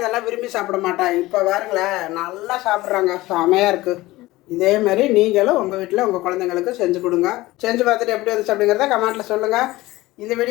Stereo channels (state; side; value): quieter; right; 18.6 dB